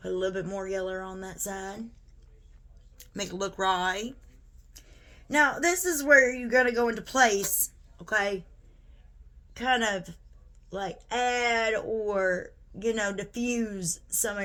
Put a little bit more yellow on that side. Make it look right. Now, this is where you're going to go into place, okay? Kind of like add or, diffuse some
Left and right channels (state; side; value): identical; both; correlation 1.00